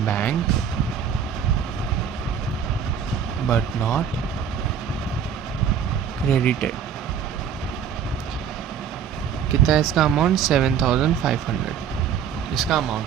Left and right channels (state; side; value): quieter; left; 7.8 dB